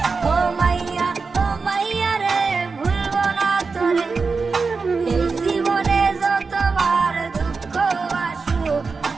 ও মাইয়া রে ভুলবো না তোরে এই জীবনে যতবার দুঃখ আসুক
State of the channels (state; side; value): quieter; left; 4.6 dB